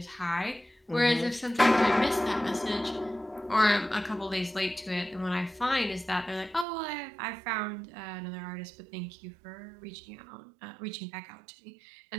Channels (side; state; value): left; drops out; at 6.7 s